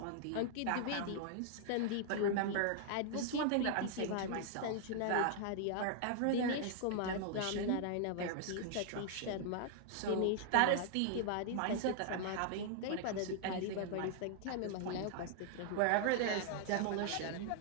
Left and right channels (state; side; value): different; both; correlation -0.01